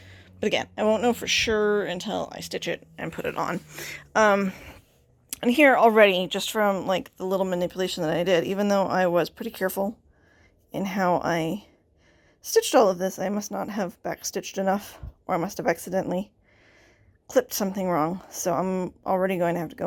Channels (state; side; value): identical; both; correlation 1.00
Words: But again, I won't know for sure until I stitch it and put it on. And here already, just from like the little manipulation that I did, even though I was pretty careful in how I stitched all of this, I must not have back stitched enough, or I must have accidentally clipped something wrong. So I'm already going to have to